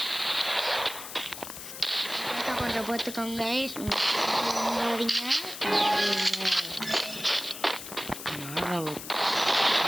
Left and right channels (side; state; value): left; noise; hiss, 10 dB below the sound